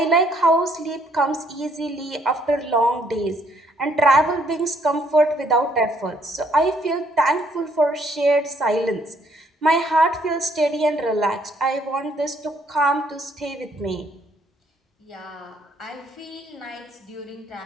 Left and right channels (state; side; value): normal; both; correlation 0.67